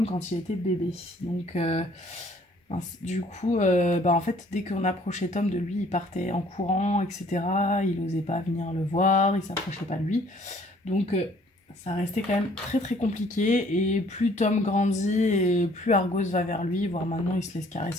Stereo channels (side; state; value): both; normal; correlation 0.58